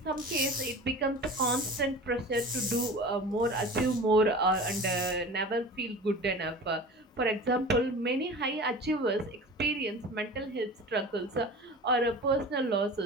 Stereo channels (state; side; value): normal; both; correlation 0.37